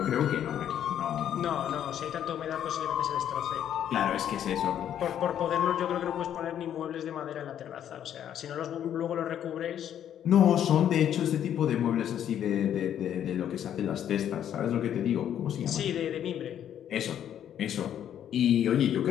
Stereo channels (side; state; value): right; quieter; 10.1 dB